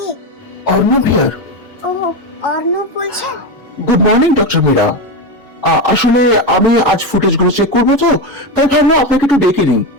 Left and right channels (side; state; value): both; normal; correlation 0.15